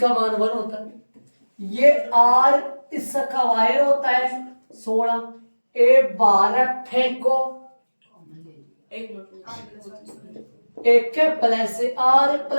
मान 1 होता है। ये R इसका वायर होता है 16। A12 फेंको, एक प्लस R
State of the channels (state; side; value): inverted; both; correlation -1.00